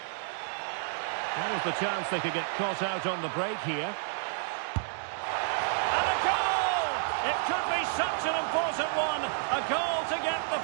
What was the chance they could get caught out on the break here? It could be such an important one. A goal to get the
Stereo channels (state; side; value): silent; left; digital silence